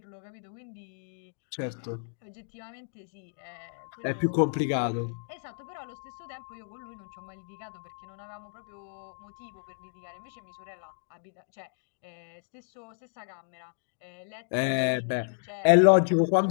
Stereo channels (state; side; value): silent; right; digital silence